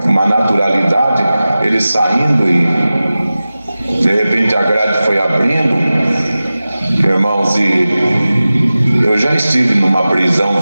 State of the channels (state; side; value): inverted; both; correlation -0.96